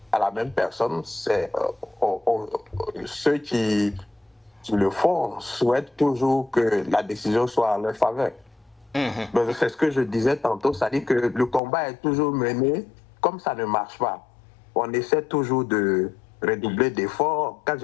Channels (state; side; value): drops out; right; at 11.6 s